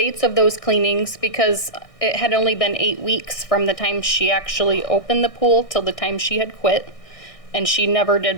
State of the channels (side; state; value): right; late; 1.6 ms